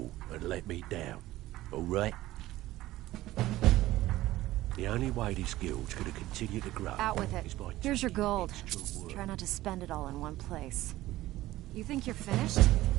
and let me down, all right? The only way this guild's gonna continue to grow... Out with it. is by Here's your taking gold. extra work. Try not to spend it all in one place. You think you're finished?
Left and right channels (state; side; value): quieter; left; 16.2 dB